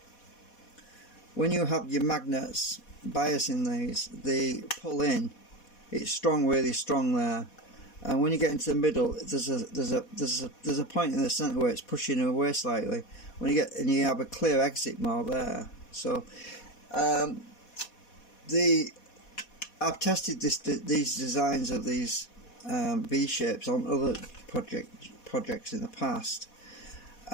you have your magnets biasing these, they pull in. It's strong, really strong there. and when you get into the middle, there's a point in the centre where it's pushing away slightly. When you get and you have a clear exit more there. So I've tested these designs of these V shapes on other projects in the past,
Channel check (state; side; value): late; right; 4.1 ms